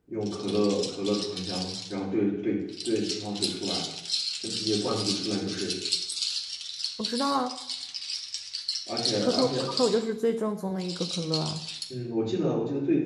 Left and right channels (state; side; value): identical; both; correlation 1.00